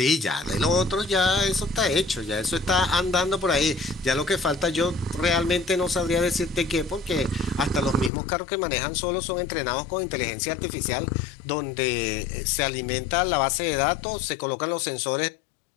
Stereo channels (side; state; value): right; drops out; at 8.1 s